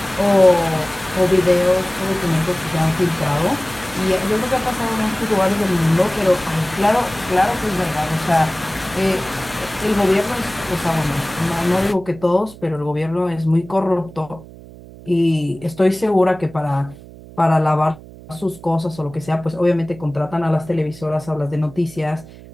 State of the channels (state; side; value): noise; right; hum, 18 dB below the sound